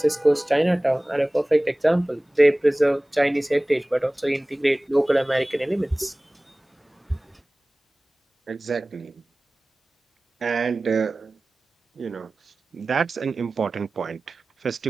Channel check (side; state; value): both; normal; correlation 0.98